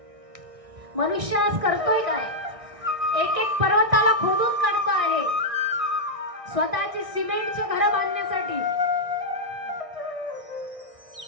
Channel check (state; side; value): late; left; 1.6 ms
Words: मनुष्य आज करतोय काय? एक एक पर्वताला खोदून काढतो आहे स्वतःची सिमेंटचे घर बांधण्यासाठी.